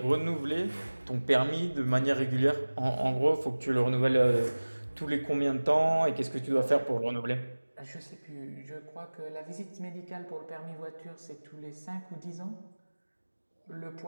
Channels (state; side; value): inverted; both; correlation -1.00